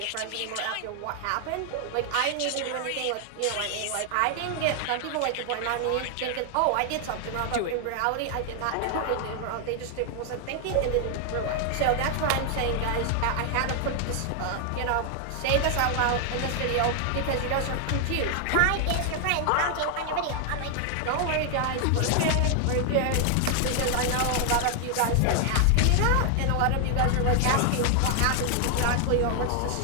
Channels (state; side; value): different; both; correlation 0.00